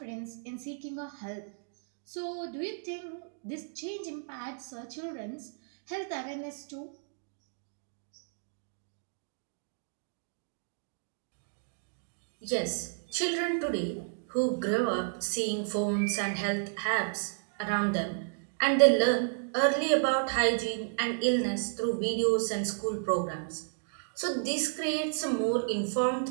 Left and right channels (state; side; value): silent; left; digital silence